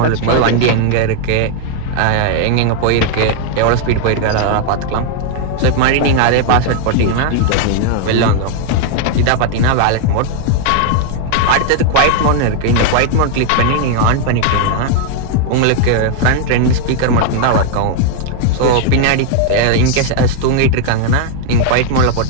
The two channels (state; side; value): different; both; correlation 0.00